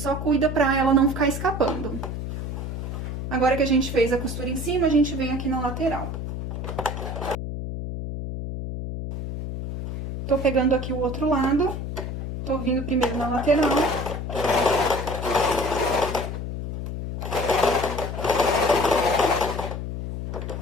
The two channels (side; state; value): left; noise; hum, 5 dB below the sound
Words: cuida pra ela não ficar escapando. Agora que a gente fez a costura em cima, a gente vem aqui na lateral. Tô pegando aqui o outro lado, tô vindo primeiro na lateral.